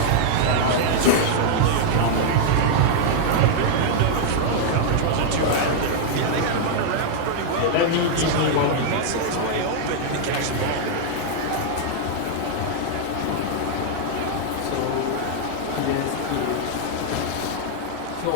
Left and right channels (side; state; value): both; different; correlation -0.01